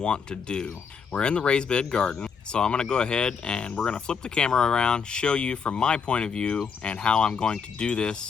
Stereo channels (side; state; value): right; quieter; 6.1 dB